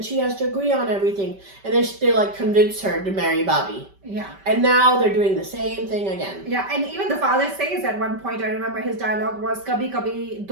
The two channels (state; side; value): late; left; 5.2 ms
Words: she has to agree on everything. And then they convince her to marry Bobby. Yeah. And now they're doing the same thing again. Yeah, and even the father says at one point, I remember his dialogue was, Kabhi kabhi